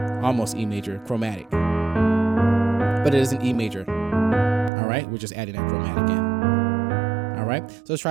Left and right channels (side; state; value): left; drops out; at 4.7 s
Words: almost E major, chromatic. But it is an E major. All right, we're just adding that chromatic in. All right, so let's